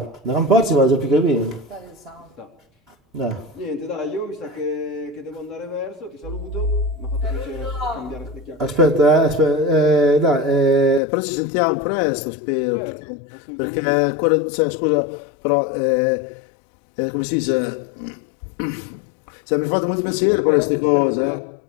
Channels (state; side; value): drops out; right; at 11.0 s